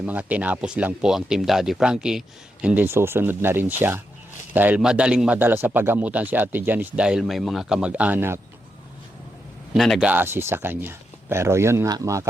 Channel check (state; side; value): normal; both; correlation 0.84